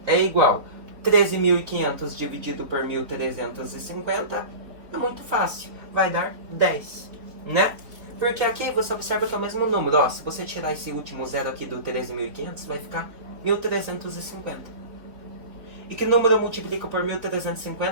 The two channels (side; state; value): left; late; 4.0 ms